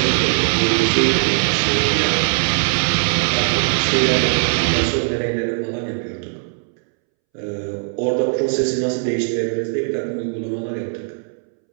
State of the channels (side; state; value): left; silent; 66 dB below the other